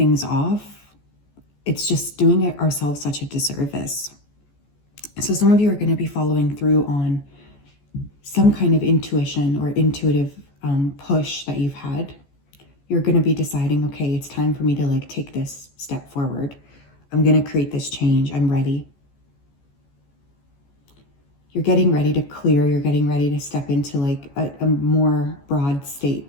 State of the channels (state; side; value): late; right; 14 ms